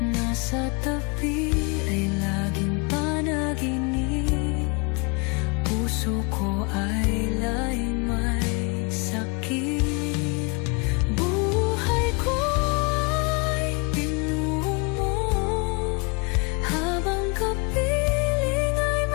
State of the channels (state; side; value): quieter; right; 31.1 dB